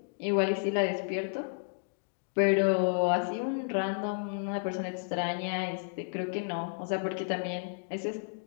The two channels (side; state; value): right; silent; digital silence